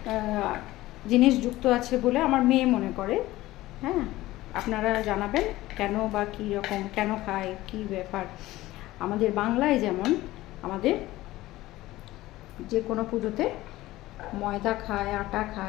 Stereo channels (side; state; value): right; quieter; 17.1 dB